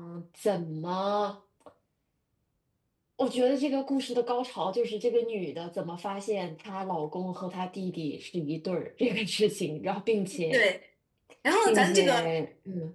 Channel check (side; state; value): both; identical; correlation 1.00